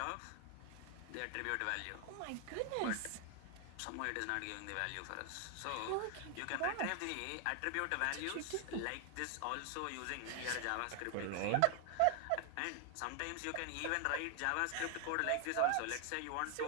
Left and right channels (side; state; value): both; different; correlation 0.00